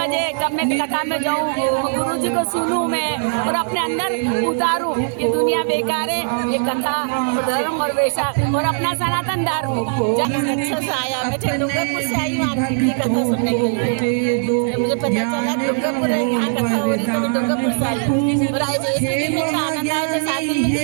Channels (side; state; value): left; silent; digital silence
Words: कब मैं कथा में जाऊँ, गुरु जी को सुनूं मैं और अपने अंदर उतारूं। ये दुनिया बेकार है, ये कथा धर्म और वैशाख और अपना सनातन धर्म। अच्छा से आया, मैं डूंगरपुर से आई हूँ आपकी कथा सुनने के लिए। मुझे पता चला डूंगरपुर यहाँ कथा हो रही, तो मैं डूंगरपुर से आई हूँ। और आज आनंद आया तो 7 दिन